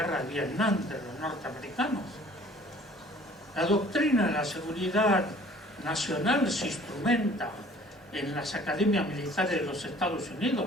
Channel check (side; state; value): both; normal; correlation 0.52